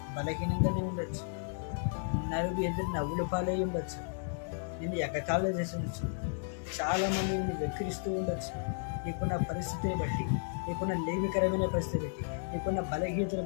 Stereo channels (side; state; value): right; silent; digital silence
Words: బలహీనంగానే ఉండొచ్చు, నలుగురు ఎదురు నవ్వుల పాలై ఉండొచ్చు, నిన్ను ఎగతాళి చేసి ఉండొచ్చు, చాలామంది నిన్ను వెక్కిరిస్తూ ఉండొచ్చు. నీకున్న పరిస్థితిని బట్టి, నీకున్న లేమికరమైన పరిస్థితి బట్టి, నీకున్న బలహీనతను